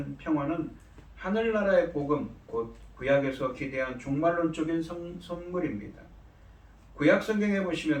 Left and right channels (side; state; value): both; identical; correlation 1.00